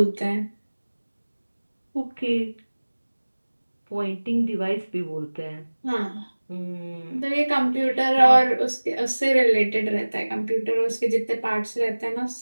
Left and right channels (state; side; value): inverted; both; correlation -1.00